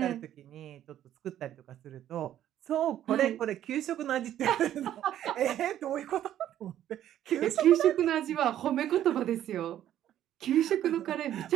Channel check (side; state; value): left; quieter; 11.6 dB